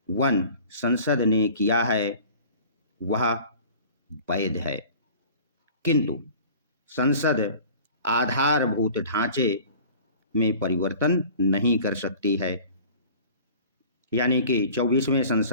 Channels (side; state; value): both; inverted; correlation -0.45